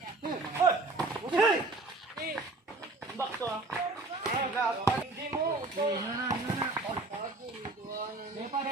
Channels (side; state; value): left; quieter; 3.1 dB